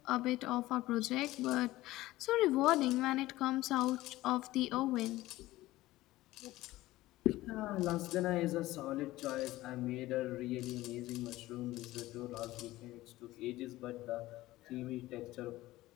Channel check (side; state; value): right; quieter; 17.2 dB